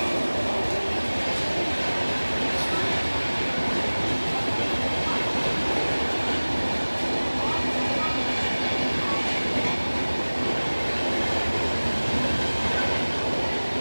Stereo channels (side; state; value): both; inverted; correlation -1.00